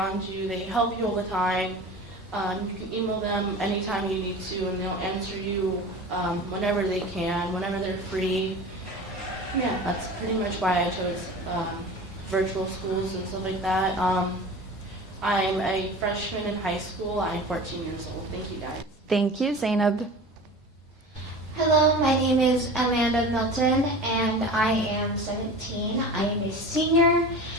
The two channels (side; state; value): both; normal; correlation 0.35